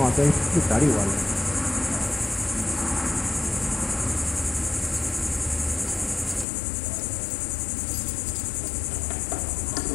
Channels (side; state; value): right; drops out; at 6.5 s